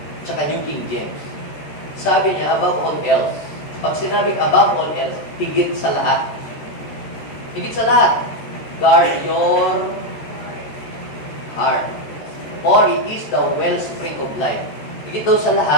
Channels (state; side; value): late; right; 13 ms